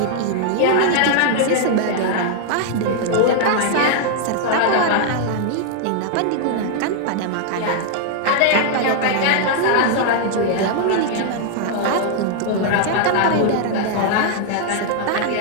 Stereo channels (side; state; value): both; different; correlation 0.00